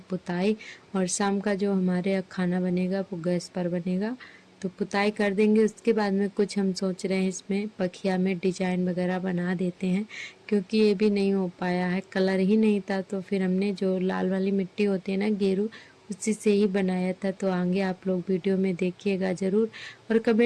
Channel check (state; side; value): identical; both; correlation 1.00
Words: और शाम का जो हमारे खाना बनेगा वो गैस पर बनेगा, तो पुताई कर देंगे। उसके बाद में कुछ हम सोच रहे हैं इसमें पखिया में डिजाइन वगैरह बना देते हैं, क्योंकि ये भी नहीं हो पाया है, कलर ही नहीं था। तो फिर हमने जो लाल वाली मिट्टी होती है ना, गेरू, उसी से ही बनाया था। तो आगे आप लोग वीडियो में देखिएगा ज़रूर और